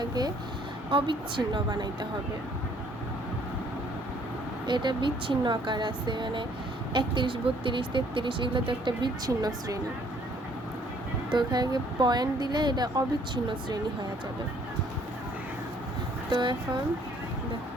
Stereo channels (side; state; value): both; normal; correlation 0.62